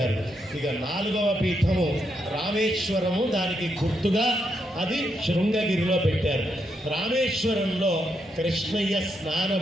ఇక 4వ పీఠము రామేశ్వరము, దానికి గుర్తుగా అది శృంగగిరిలో పెట్టారు. రామేశ్వరంలో కృష్ణయ్య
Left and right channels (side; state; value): both; normal; correlation 0.80